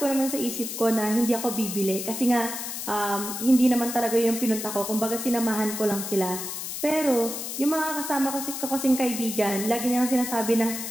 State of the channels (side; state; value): left; noise; hiss, 6 dB below the sound